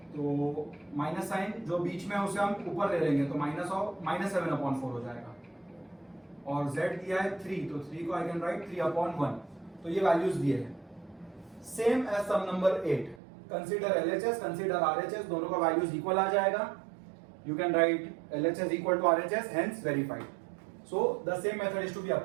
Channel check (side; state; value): left; drops out; at 13.2 s